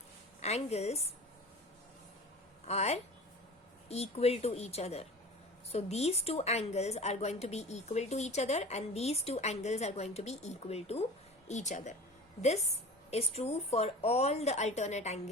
angles are equal to each other. So these two angles are going to be equal to each other, and these two angles are going to be equal to each other. This is true for all the alternate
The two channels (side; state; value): both; normal; correlation 0.38